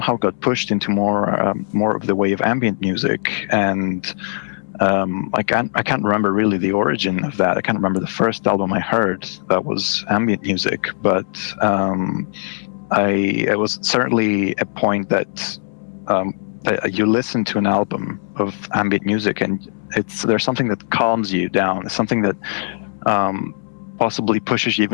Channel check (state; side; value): silent; right; 66 dB below the other